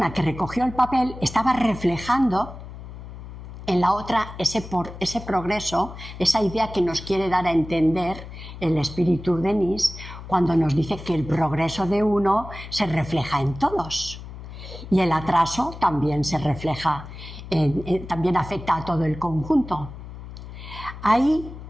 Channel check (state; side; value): noise; left; hum, 13 dB below the sound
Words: que recogió el papel estaba reflejando en la otra ese progreso, esa idea que nos quiere dar a entender el espíritu Denis cuando nos dice que el progreso de uno se refleja en todos y el atraso también se refleja, también afecta a todo el conjunto. Ahí